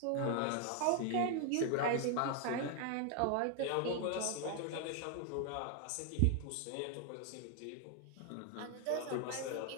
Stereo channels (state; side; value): different; both; correlation 0.00